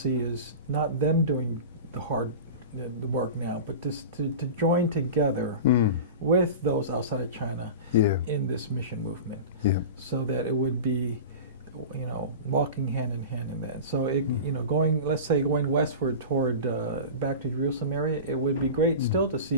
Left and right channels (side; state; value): both; inverted; correlation -0.31